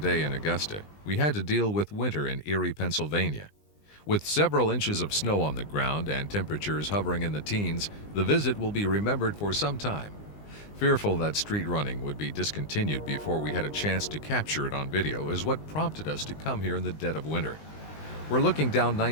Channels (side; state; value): right; late; 20 ms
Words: in Augusta, we had to deal with winter in Erie, Pennsylvania. With several inches of snow on the ground and temperatures hovering in the teens, the visit will be remembered for some time. Fearful that street running would be discontinued before we had a chance to capture it on video is what prompted us to come here in the dead of winter. We're looking down